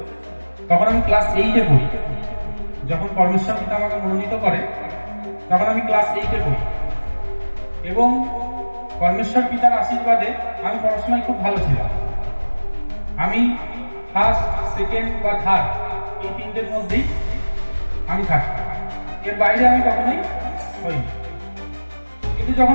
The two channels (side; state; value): both; inverted; correlation -1.00